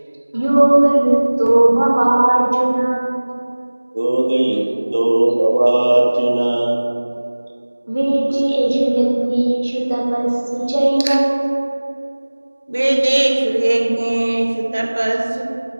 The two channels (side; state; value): both; inverted; correlation -1.00